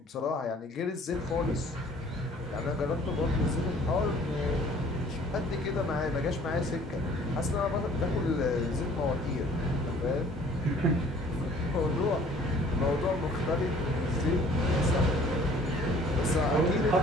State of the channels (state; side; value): normal; both; correlation 0.54